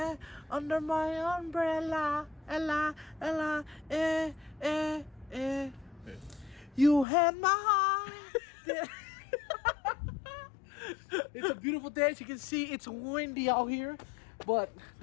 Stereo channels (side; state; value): right; drops out; at 7.1 s